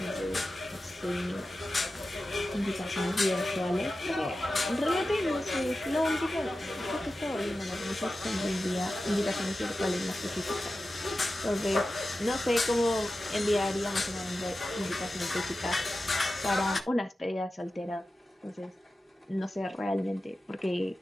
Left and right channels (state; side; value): normal; both; correlation 0.94